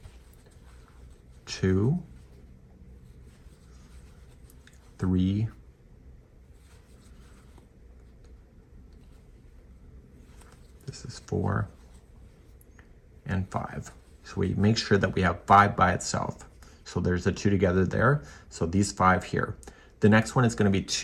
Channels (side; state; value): both; identical; correlation 1.00